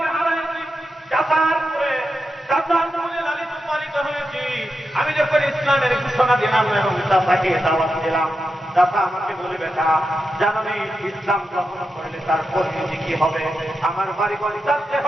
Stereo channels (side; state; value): both; normal; correlation 0.88